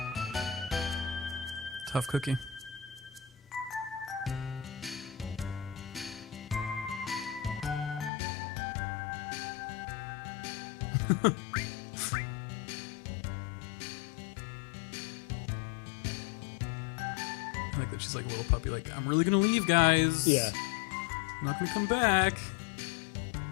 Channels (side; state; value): right; drops out; at 8.1 s